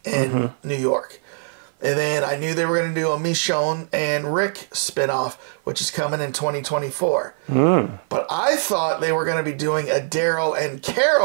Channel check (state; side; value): silent; left; 55 dB below the other